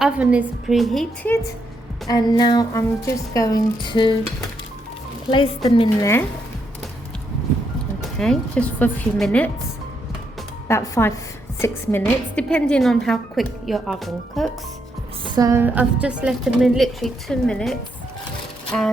is preheated, and now I'm just going to place them in there. Okay, just for a few minutes, about 5-6 minutes, depending on how quick your oven cooks. So I've just left them in literally 2 minutes,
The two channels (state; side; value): normal; both; correlation 0.78